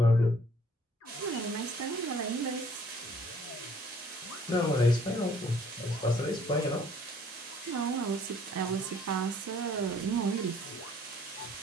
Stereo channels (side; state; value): both; normal; correlation 0.59